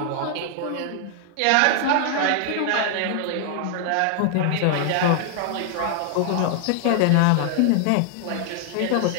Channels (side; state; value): both; different; correlation 0.00